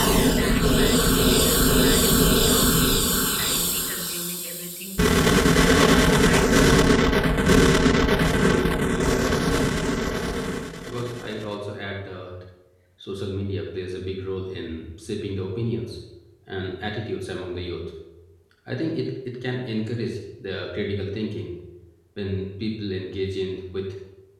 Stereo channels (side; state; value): both; identical; correlation 1.00